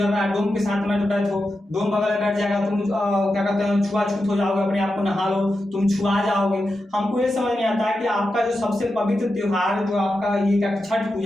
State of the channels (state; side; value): normal; both; correlation 0.89